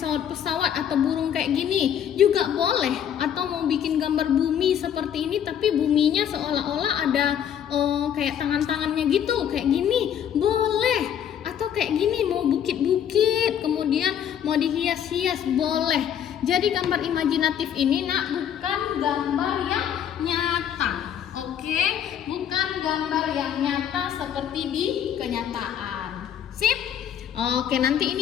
atau burung kayak gini juga boleh. Atau mau bikin gambar bumi seperti ini tapi buminya seolah-olah ada kayak tangan-tangannya gitu, kayak gini boleh. Atau kayak gini mau bukit-bukit, kemudian mau dihias-hias boleh. Jadi gambar imajinatif ini nak bukan gambar yang nyata. Oke, bukan gambar yang nyata seperti di kenyataan. Sip? Oke, nanti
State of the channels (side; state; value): right; quieter; 9.3 dB